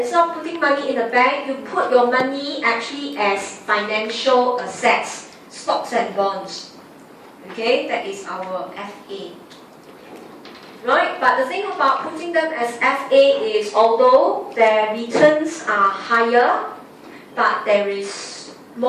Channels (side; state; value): both; identical; correlation 1.00